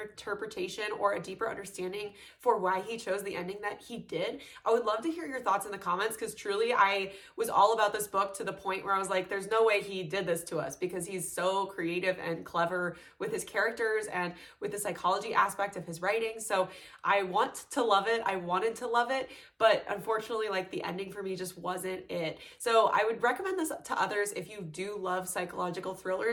or a deeper understanding for why he chose the ending that he did, I would love to hear your thoughts in the comments, because truly I was all about this book to the point where I was like, there's no way he did this to us, because he's so creative and clever with his characters and with the psychology aspect of his writing. So I want to love it. I wanted to love it, but unfortunately, like, the ending for me just wasn't it. So I would recommend this to others If you do love psychological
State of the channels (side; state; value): both; identical; correlation 1.00